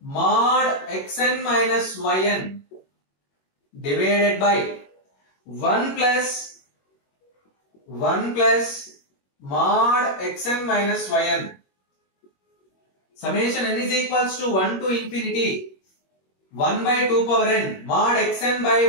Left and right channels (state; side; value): late; right; 21 ms